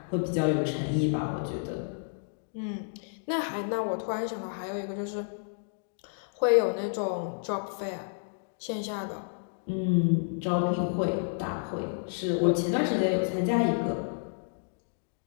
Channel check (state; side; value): silent; right; digital silence